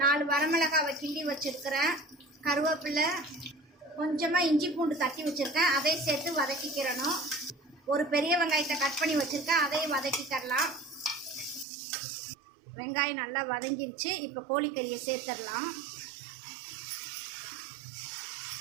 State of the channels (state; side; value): drops out; left; at 11.7 s